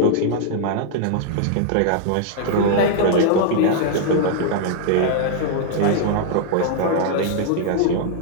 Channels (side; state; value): both; different; correlation -0.01